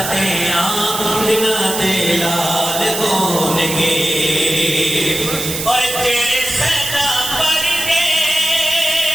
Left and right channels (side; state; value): right; noise; hiss, 5 dB below the sound